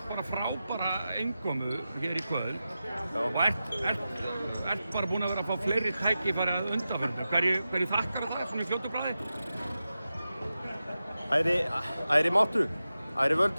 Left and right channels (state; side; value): inverted; both; correlation -0.92